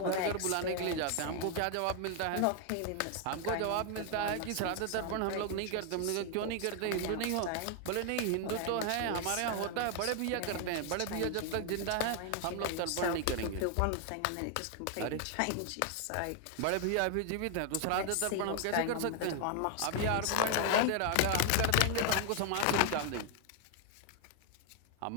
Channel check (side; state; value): both; different; correlation 0.00